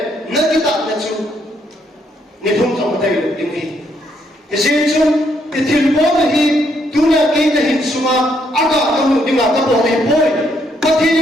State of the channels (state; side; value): normal; both; correlation 0.73